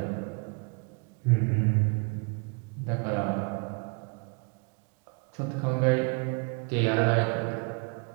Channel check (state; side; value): quieter; left; 35.2 dB